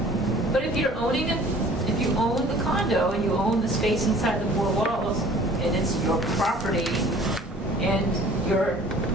But if you're owning it, if you own the condo and you own the space inside the 4 walls, and it's your property, and your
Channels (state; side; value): normal; both; correlation 0.50